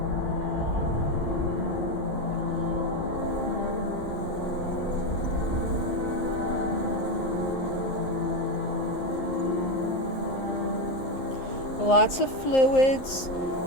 Lots of fluids,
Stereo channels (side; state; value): right; late; 11 ms